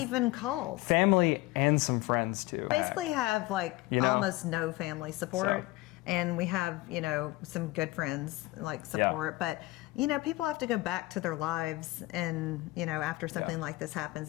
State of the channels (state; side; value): quieter; right; 19.8 dB